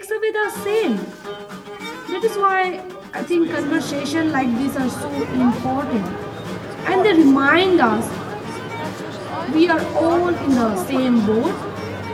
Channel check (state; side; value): identical; both; correlation 1.00